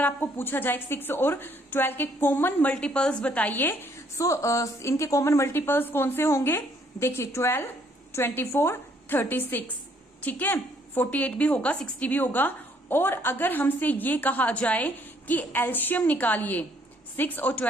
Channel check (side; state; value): both; normal; correlation 0.66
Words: आपको पूछा जाए 6 और 12 के कॉमन मल्टीपल्स बताइए, सो इनके कॉमन मल्टीपल्स कौन से होंगे। देखिए 12, 24, 36, ठीक है, 48 भी होगा, 60 भी होगा। और अगर हमसे ये कहा जाए कि एलशियम निकालिए, 6 और